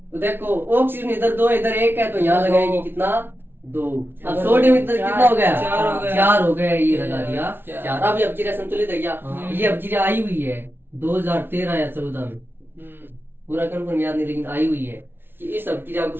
तो देखो ऑक्सीजन इधर दो इधर एक है, तो यहाँ लगाएंगे कितना, दो। अब सोडियम इधर कितना हो गया, चार हो गया, ये लगा दिया चार। अब ये अपक्रिया संतुलित है क्या, ये अपक्रिया आई हुई है, 2013 या 14 में, पूरा कंफर्म याद नहीं लेकिन आई हुई है कि इस अभिक्रिया को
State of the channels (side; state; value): left; late; 0.11 ms